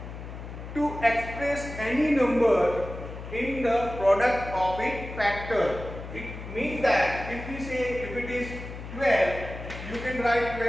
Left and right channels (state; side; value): noise; left; hum, 10 dB below the sound